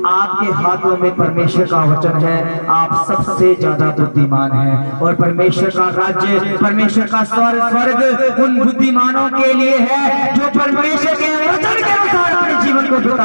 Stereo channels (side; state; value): both; inverted; correlation -1.00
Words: आपके हाथों में परमेश्वर का वचन है, आप सबसे ज्यादा बुद्धिमान हैं। और परमेश्वर का राज्य, परमेश्वर का स्वर्ग उन बुद्धिमानों के लिए है जो परमेश्वर के वचन के अनुसार अपने जीवन को